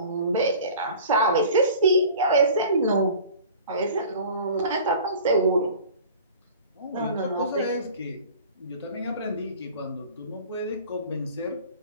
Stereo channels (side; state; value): both; inverted; correlation -0.44